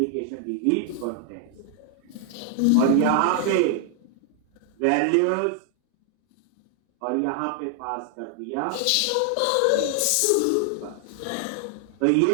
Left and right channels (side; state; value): both; different; correlation 0.00